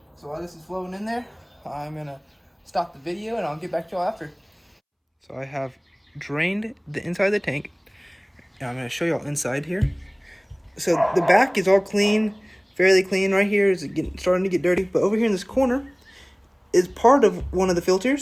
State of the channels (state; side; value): identical; both; correlation 1.00